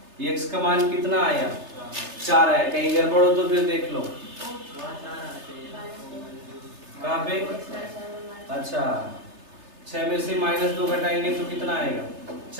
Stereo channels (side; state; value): left; late; 3.3 ms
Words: x का मान कितना आया 4 आया। कहीं गड़बड़ हो तो फिर देख लो, कहाँ पे, अच्छा 6 में से माइनस 2 घटाएंगे तो कितना आएगा